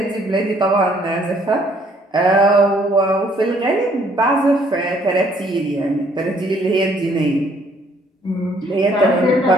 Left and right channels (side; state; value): both; normal; correlation 0.64